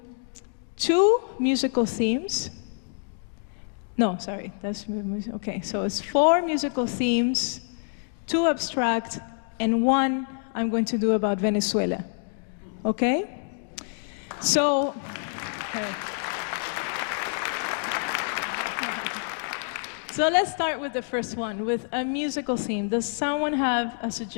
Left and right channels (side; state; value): right; silent; 60 dB below the other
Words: 2 musical themes. No, sorry, that's okay. So it's 4 musical themes, 2 abstract, and 1 I'm going to do about Venezuela. Okay? So, okay. So let's start with the first one, with a musical theme. Does someone have a